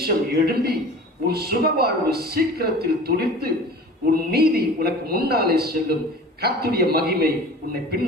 எழும்பி உன் சுகவாழ்வு சீக்கிரத்தில் துளிர்த்து உன் நீதி உனக்கு முன்னாலே செல்லும், கர்த்தருடைய மகிமை உன்னை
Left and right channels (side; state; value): both; normal; correlation 0.40